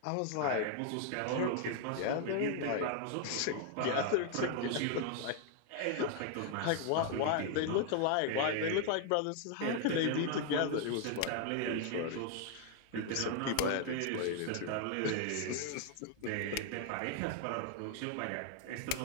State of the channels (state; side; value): different; both; correlation 0.00